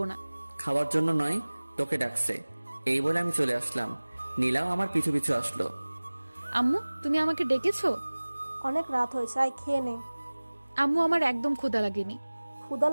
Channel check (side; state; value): both; inverted; correlation -1.00